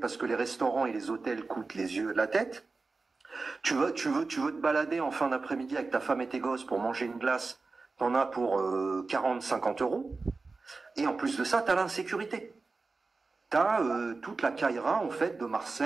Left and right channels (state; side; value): quieter; left; 3.9 dB